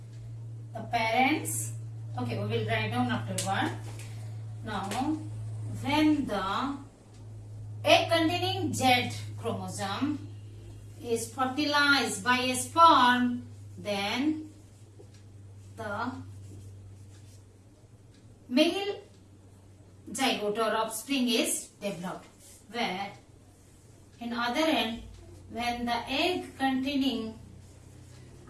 The parents. Okay, we will write down after one. Now, when the egg containing Z chromosome is fertilized by a sperm, then the male zygote or offspring is developed. Where in other end, when the egg containing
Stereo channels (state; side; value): identical; both; correlation 1.00